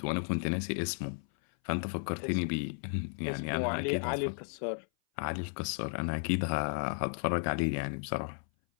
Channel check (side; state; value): right; silent; 55 dB below the other